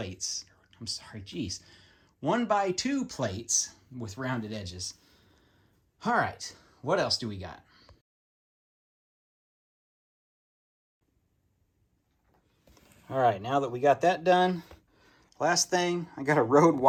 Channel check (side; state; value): both; identical; correlation 1.00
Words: I'm sorry, geez. 1x2 plates with rounded edges. All right, what else do we got? All right, now that we got that done, last thing, I got a Rode